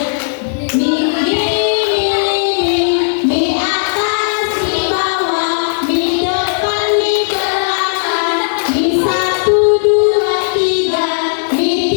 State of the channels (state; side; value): silent; right; digital silence